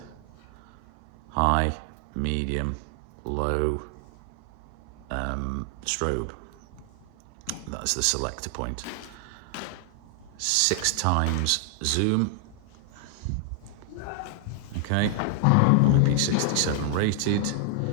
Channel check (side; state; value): both; different; correlation 0.00